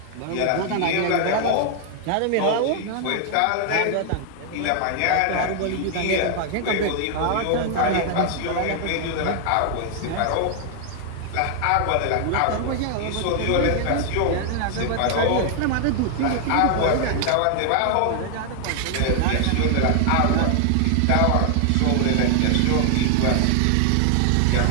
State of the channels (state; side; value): different; both; correlation 0.00